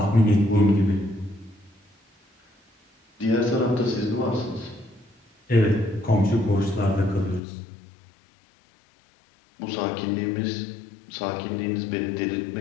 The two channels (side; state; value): right; drops out; at 7.4 s